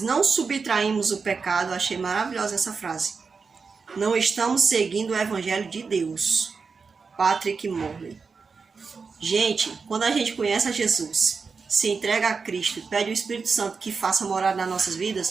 subtraímos o pecado, achei maravilhosa essa frase. Não estamos seguindo o Evangelho de Deus. Patrick Morley. Gente, quando a gente conhece a Jesus, se entrega a Cristo, pede o Espírito Santo que faça morada nas nossas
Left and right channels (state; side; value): quieter; left; 5.0 dB